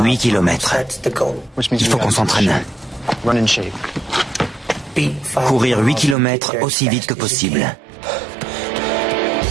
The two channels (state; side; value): drops out; left; at 6.2 s